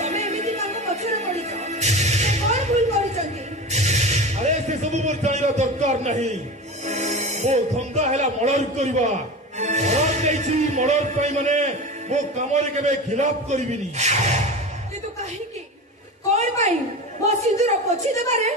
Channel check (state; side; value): normal; both; correlation 0.29